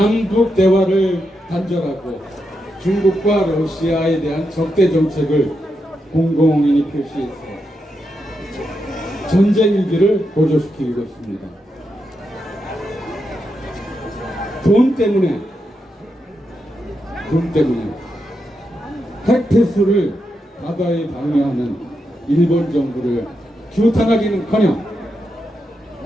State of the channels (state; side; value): normal; both; correlation 0.85